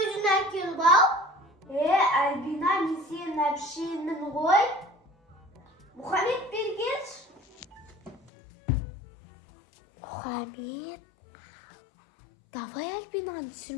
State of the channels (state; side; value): drops out; right; at 8.3 s